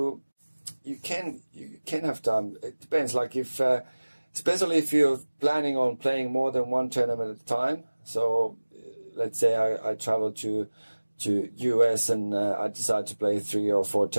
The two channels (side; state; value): both; inverted; correlation -1.00